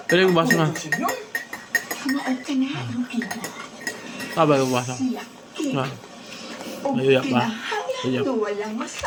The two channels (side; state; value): both; identical; correlation 1.00